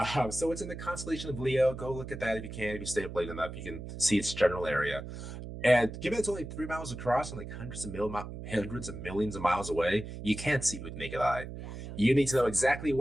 so it's in the constellation of Leo. Go look at that if you can. If you stay up late enough, you can see its general area. And given it's only 3 miles across and like hundreds of millions of miles away, you can't see it with naked eye. Yeah, no, you need to know exactly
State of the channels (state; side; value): noise; right; hum, 9 dB below the sound